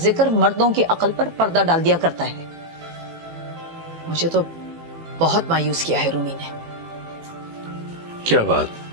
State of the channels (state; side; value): late; left; 18 ms